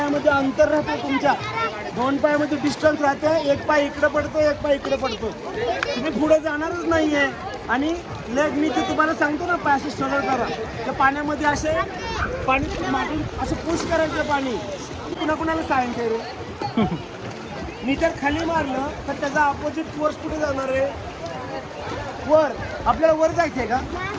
अंतर राहते तुमच्या 2 पायामध्ये डिस्टन्स राहते एक पाय इकडे पडतो एक पाय इकडे पडतो तुम्ही पुढे जाणारच नाहीये आणि लेग मी ते तुम्हाला सांगतो ना पाय असे सरळ करा त्या पाण्यामध्ये असे पाणी मागून असं पुश करायचं पाणी कुणाला सायन्स आहे रे मी जर खाली मारलं तर त्याचा अपोजिट फोर्स कुठे जाणार आहे वर आपल्याला वर जायचं आहे का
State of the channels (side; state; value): both; identical; correlation 1.00